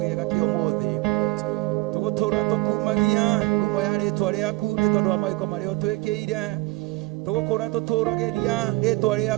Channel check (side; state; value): left; quieter; 21.7 dB